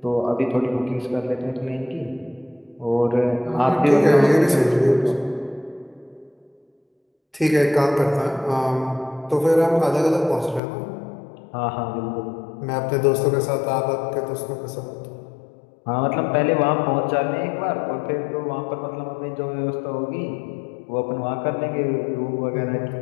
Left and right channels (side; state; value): right; drops out; at 10.6 s